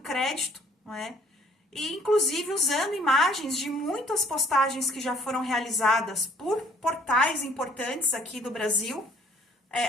não é? E inclusive usando imagens de muitas postagens que já foram realizadas por portais importantes aqui do Brasil,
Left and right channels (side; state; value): both; normal; correlation 0.59